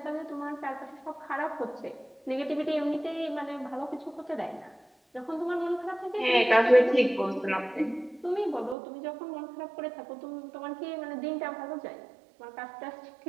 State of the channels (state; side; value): drops out; left; at 8.8 s